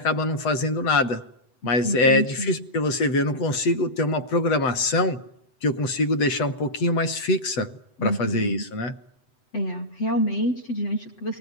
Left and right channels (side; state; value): right; late; 7.9 ms